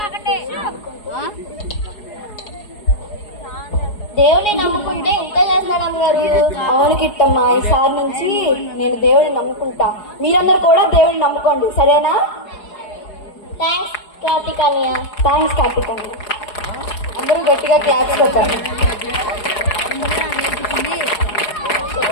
దేవుని నమ్ముకుంటే ఇంత చేస్తాడు అమ్మగారు. అవును కిట్టమ్మా, ఈసారి నుంచి నేను దేవుడిని నమ్ముకుంటా. మీరందరూ కూడా దేవుడిని నమ్ముకోండి, సరేనా? థ్యాంక్స్ కార్తికానియా. థ్యాంక్స్ కార్తికానియా. అందరూ గట్టిగా క్లాప్స్ కొట్టారు.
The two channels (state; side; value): late; right; 4.8 ms